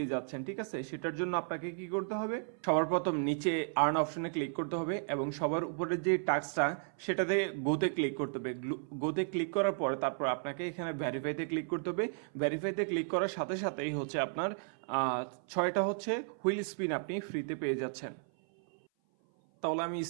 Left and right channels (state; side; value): silent; left; 55 dB below the other